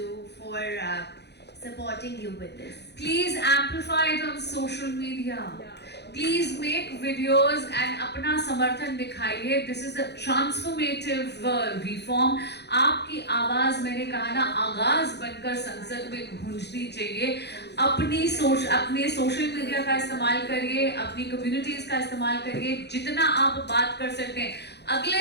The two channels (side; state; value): right; late; 0.49 ms